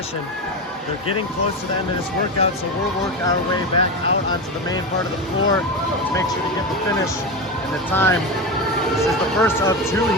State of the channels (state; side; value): normal; both; correlation 0.18